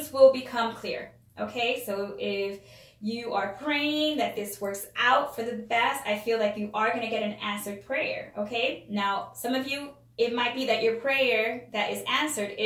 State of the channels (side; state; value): both; identical; correlation 1.00